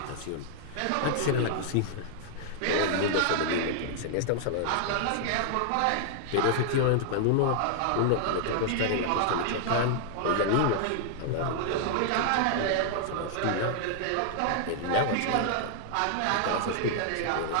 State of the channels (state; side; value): different; both; correlation -0.01